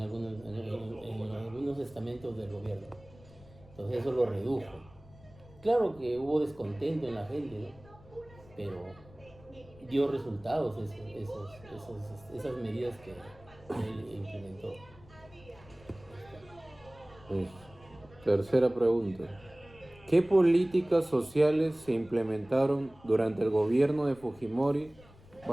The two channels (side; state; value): left; noise; rumble, 23 dB below the sound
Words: estamentos del gobierno. Entonces eso lo redujo. Claro que hubo descontento en la gente, ¿no? Pero dio resultados esas medidas que él implementó. Pues, tercera pregunta. ¿Qué políticas sociales se implementaron durante el gobierno de Fujimori